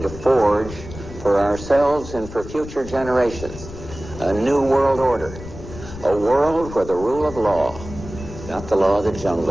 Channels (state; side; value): noise; left; rumble, 13 dB below the sound